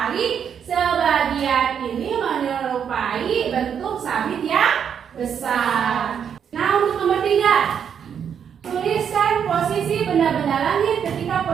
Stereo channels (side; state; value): left; quieter; 7.9 dB